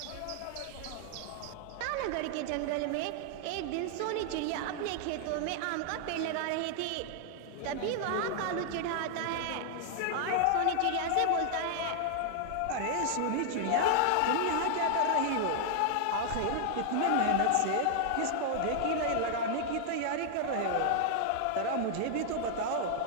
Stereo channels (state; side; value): different; both; correlation 0.00